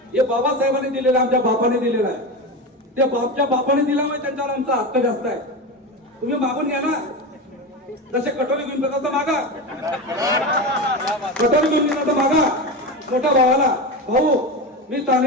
हे बाबासाहेबांनी दिलेलं, आमच्या बापाने दिलेलं आहे. ते बापच्या बापाने दिल्यामुळे त्यांच्यावर आमचा हक्क जास्त आहे. तुम्ही मागून घ्या ना, जसे कटोरी घेऊन तसं मागा, कटोरी घेऊन तसं मागा. मोठ्या भावाला, भाऊ मी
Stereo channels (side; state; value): both; normal; correlation 0.21